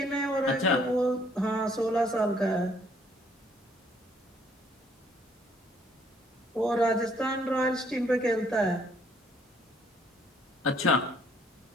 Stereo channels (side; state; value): both; normal; correlation 0.64